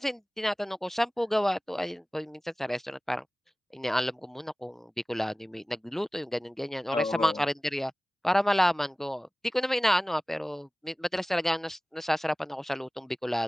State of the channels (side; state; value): both; normal; correlation 0.98